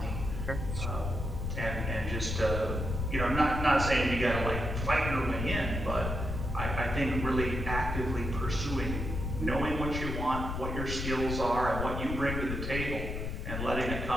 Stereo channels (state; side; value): noise; left; rumble, 3 dB below the sound